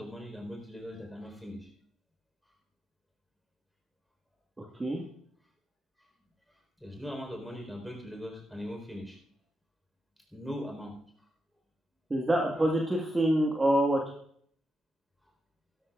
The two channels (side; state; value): both; normal; correlation 0.87